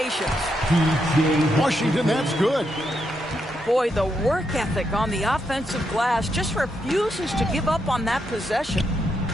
Washington, that's good. Boy, the work ethic on the offensive glass just refuses to give up on that possession.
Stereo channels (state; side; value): normal; both; correlation 0.81